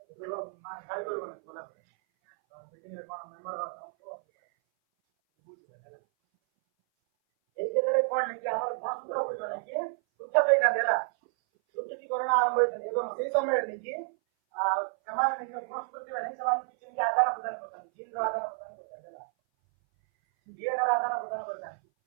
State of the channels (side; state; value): left; silent; 57 dB below the other